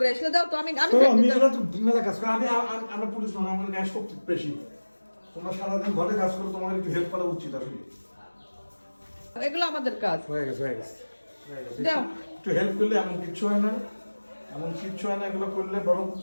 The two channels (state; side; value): inverted; both; correlation -1.00